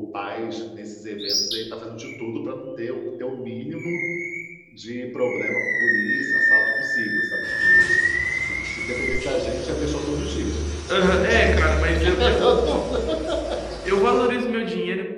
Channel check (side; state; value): both; identical; correlation 1.00